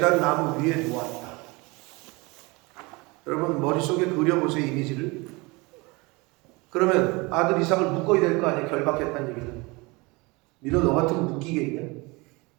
나무 위에 놓았다. 여러분 머릿속에 그려보세요, 이미지를. 그러면 아들 이삭을 묶어야 될 거 아니에요, 결박했다는 얘기는. 니너 너 같으면 묶이겠냐?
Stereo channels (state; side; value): quieter; left; 25.5 dB